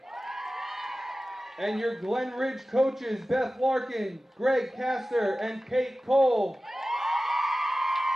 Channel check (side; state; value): both; normal; correlation 0.96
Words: And your Glen Ridge coaches, Beth Larkin, Greg Castor, and Kate Cole.